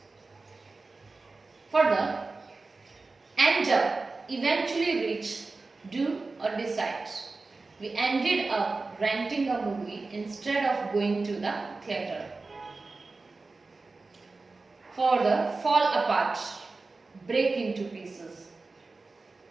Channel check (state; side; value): quieter; left; 3.7 dB